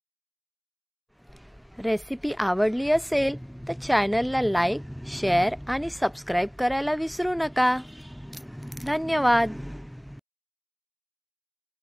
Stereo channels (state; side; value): identical; both; correlation 1.00